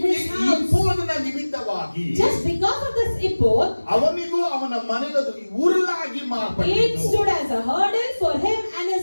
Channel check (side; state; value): both; inverted; correlation -1.00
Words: his ಈ house. ಇಪ್ಪೋದನ ನಿಮಿತ್ತವಾಗಿ Just because of this ephod, ಅವನಿಗೂ ಅವನ ಮನೆಗೂ ಉರುಲಾಗಿ it ಮಾರ್ಪಟ್ಟಿತು. stood as a hurdle for him and